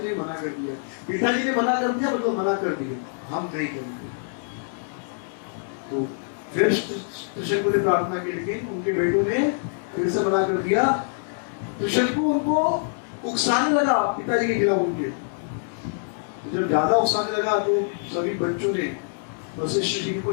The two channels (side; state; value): right; silent; 62 dB below the other